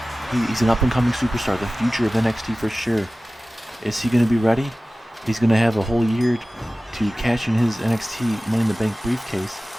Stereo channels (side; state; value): both; normal; correlation 0.97